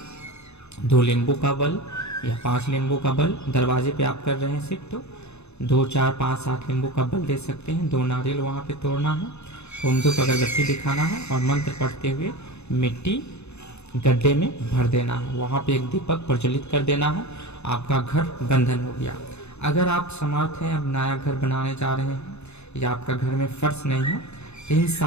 2 नींबू का बल या 5 नींबू का बल, दरवाजे पे आप कर रहे हैं सिर्फ तो 2, 4, 5, 7 नींबू का बल दे सकते हैं। 2 नारियल वहाँ पे तोड़ना है, होम धूप अगरबत्ती दिखाना है और मंत्र पढ़ते हुए मिट्टी गड्ढे में भर देना है। वहाँ पे एक दीपक प्रज्वलित कर देना है। आपका घर बंधन हो गया। अगर आप समर्थ हैं, अब नया घर बनाने जा रहे हैं या आपका घर में फर्श नहीं है, तो इन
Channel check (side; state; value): right; late; 0.81 ms